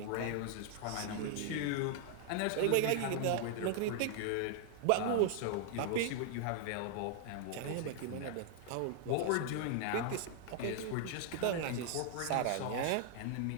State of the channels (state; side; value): different; both; correlation 0.00